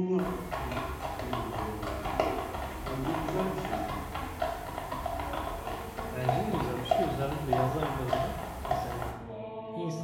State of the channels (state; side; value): identical; both; correlation 1.00